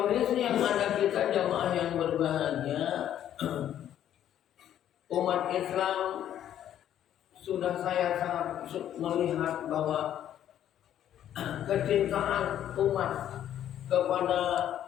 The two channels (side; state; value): right; quieter; 10.9 dB